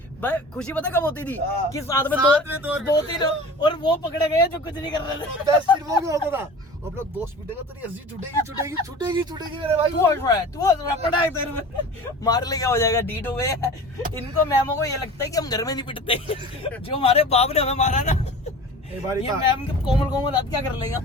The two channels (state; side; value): normal; both; correlation 0.38